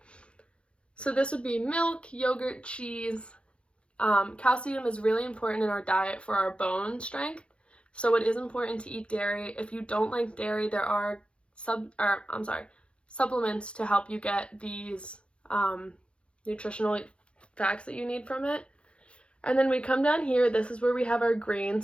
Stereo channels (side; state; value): right; late; 0.058 ms